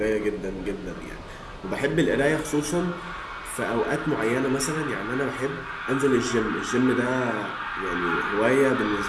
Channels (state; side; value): identical; both; correlation 1.00